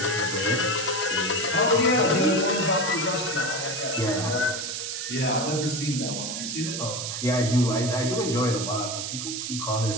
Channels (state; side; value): noise; right; hiss, 4 dB below the sound